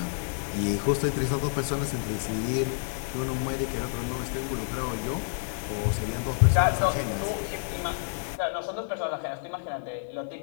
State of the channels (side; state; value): right; silent; digital silence